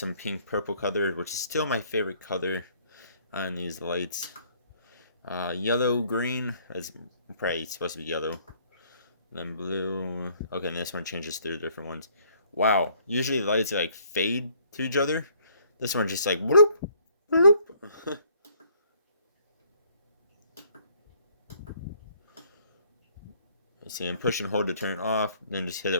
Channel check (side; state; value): both; inverted; correlation -0.62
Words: pink purple color, which is still my favorite color on these lights. Yellow, green, is probably supposed to be yellow. Then blue. Okay, and this one changes through the different ones. Wow, usually the lights like fade to each other. This one just like bloop, bloop. You see, and push and hold to turn it off, then just hit